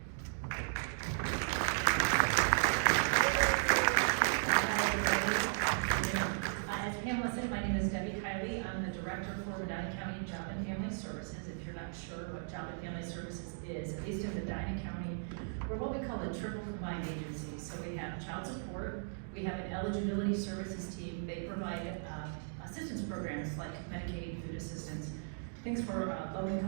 As Pamela said, my name is Debbie Kiley. I'm the Director for Medina County Job and Family Services. If you're not sure what Job and Family Services is, at least in Medina County, we're what we call a triple combined agency. So we have child support, we have an eligibility services team. They provide assistance programs like Medicaid, food assistance, things for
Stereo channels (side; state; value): left; silent; digital silence